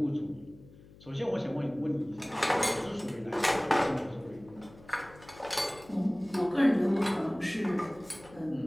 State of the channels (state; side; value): noise; left; hum, 22 dB below the sound